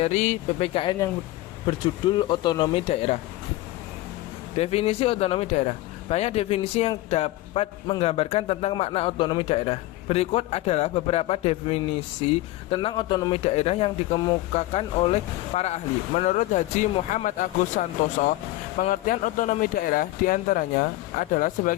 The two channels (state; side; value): quieter; right; 17.2 dB